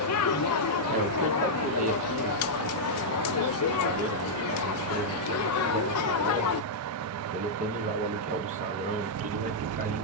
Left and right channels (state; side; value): normal; both; correlation -0.06